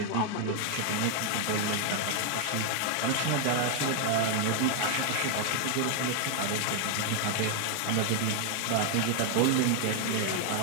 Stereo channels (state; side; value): different; both; correlation 0.00